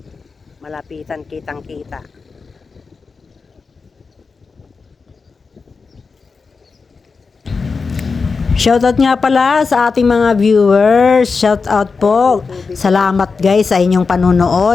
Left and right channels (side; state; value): right; quieter; 4.7 dB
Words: malapitan, kitang-kita. Shoutout nga pala sa ating mga viewers. Shoutout po. Salamat guys sa inyong